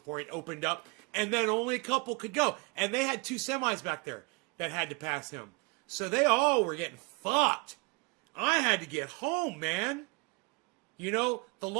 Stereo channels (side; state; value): left; quieter; 29.1 dB